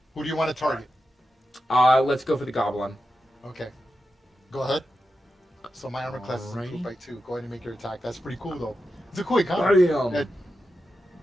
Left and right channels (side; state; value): both; normal; correlation 0.90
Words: Who do you want to target? Let's go for the goblin. Okay, go ahead. So my armor class is Alrighty. improved by 2. Go ahead and make your attack. That's pretty cool, though. It's a cool encounter. Bam.